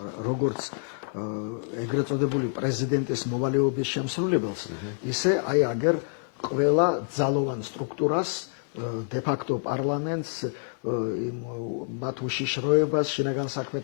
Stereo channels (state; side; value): silent; right; 60 dB below the other